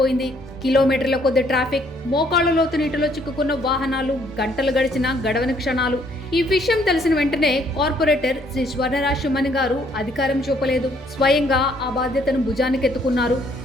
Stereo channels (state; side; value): normal; both; correlation 0.66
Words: కిలోమీటర్ల కొద్ది ట్రాఫిక్, మోకాళ్ల లోతు నీటిలో చిక్కుకున్న వాహనాలు, గంటలు గడిచిన గడవని క్షణాలు. ఈ విషయం తెలిసిన వెంటనే కార్పొరేటర్ శ్రీ స్వర్ణరాజ్ శివమణి గారు అధికారం చూపలేదు, స్వయంగా ఆ బాధ్యతను భుజానికెత్తుకున్నారు.